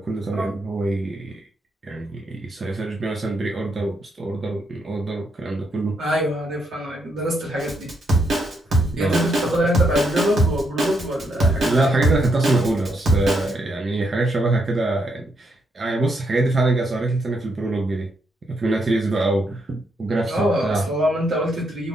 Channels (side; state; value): both; normal; correlation 0.77